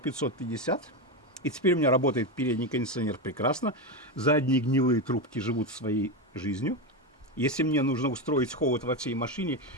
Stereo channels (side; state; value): both; normal; correlation 0.13